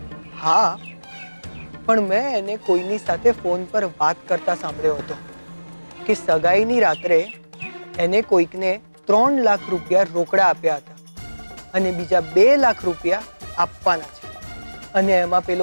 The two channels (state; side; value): inverted; both; correlation -1.00